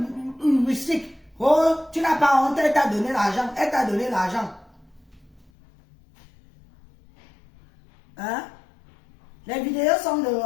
heuristique. Oh, tu n'as pas honte, elle t'a donné l'argent. Elle t'a donné l'argent. Hein? Les vidéos sont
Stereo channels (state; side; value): drops out; right; at 5.5 s